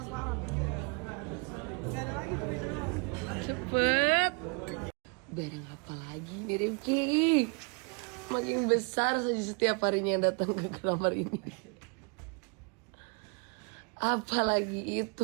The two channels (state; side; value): quieter; left; 35.0 dB